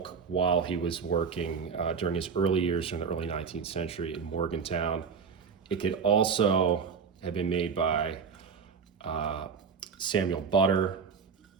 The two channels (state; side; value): quieter; left; 6.0 dB